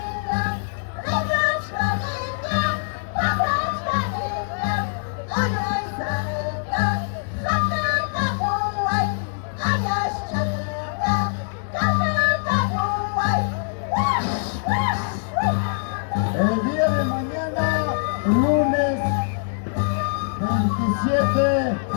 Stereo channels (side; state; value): right; silent; digital silence